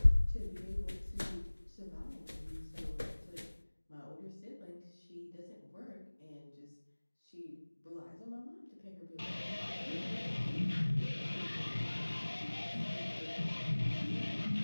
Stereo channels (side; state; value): both; inverted; correlation -1.00